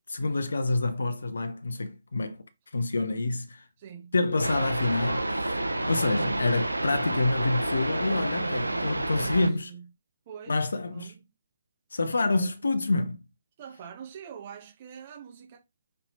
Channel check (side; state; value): both; inverted; correlation -0.92